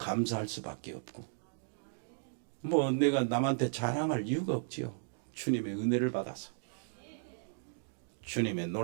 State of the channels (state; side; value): silent; left; digital silence